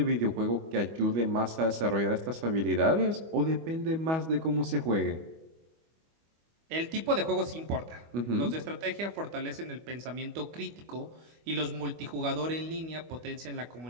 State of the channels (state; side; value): late; left; 25 ms